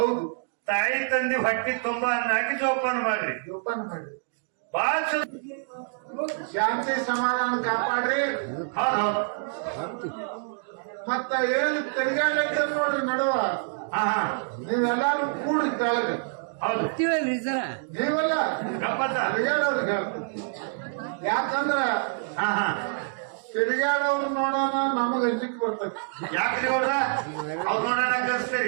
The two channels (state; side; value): silent; left; digital silence